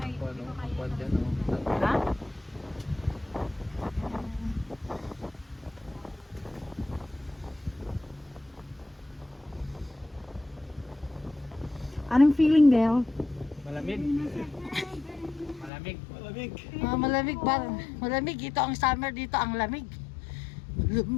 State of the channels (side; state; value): right; drops out; at 15.7 s